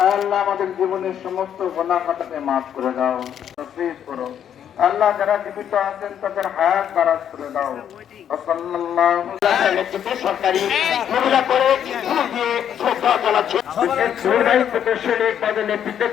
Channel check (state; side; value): quieter; right; 9.3 dB